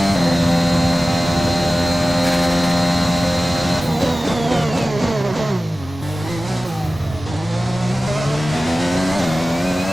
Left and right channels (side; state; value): both; normal; correlation 0.96